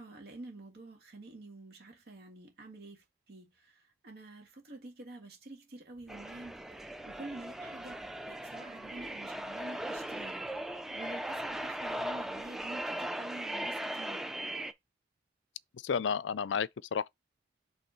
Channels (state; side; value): normal; both; correlation 0.38